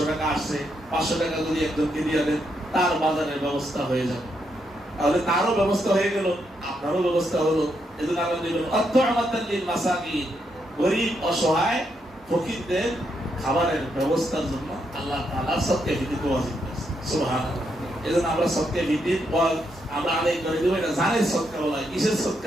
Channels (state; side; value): normal; both; correlation 0.79